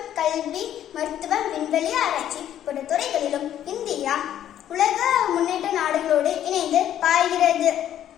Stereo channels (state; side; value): quieter; right; 11.0 dB